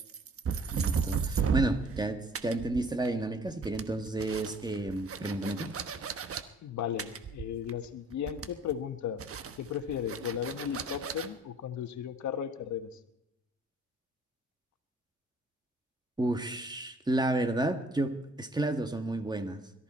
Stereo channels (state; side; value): normal; both; correlation 0.54